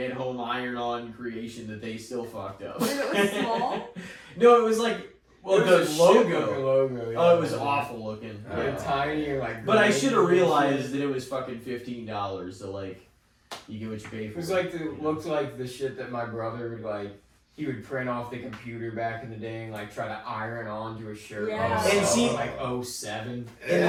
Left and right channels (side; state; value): both; identical; correlation 1.00